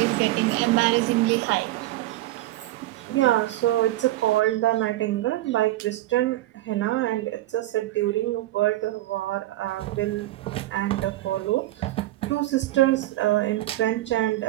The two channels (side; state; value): left; quieter; 16.2 dB